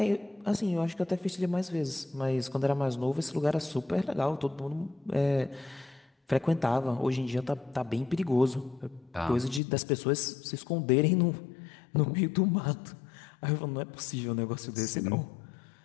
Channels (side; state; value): right; drops out; at 9.6 s